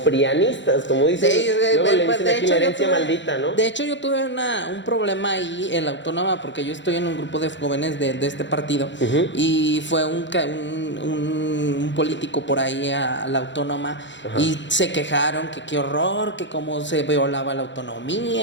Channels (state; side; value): late; right; 0.53 ms